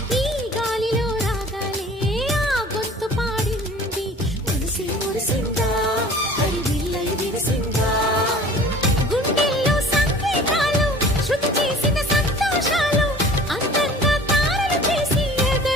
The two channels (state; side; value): normal; both; correlation 0.46